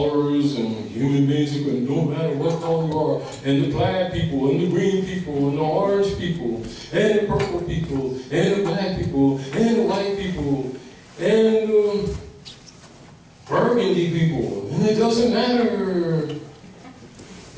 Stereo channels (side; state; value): both; identical; correlation 1.00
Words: and human beings who can, no matter what color you are, and the plaid people, and the green people, and the orange people, and the purple people, and the black people, and the white people, and the burgundy people, and it doesn't matter.